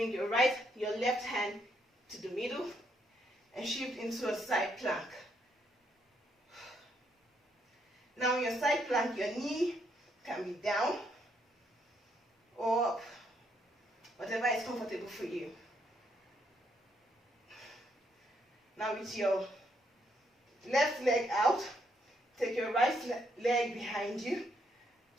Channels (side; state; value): both; normal; correlation 0.74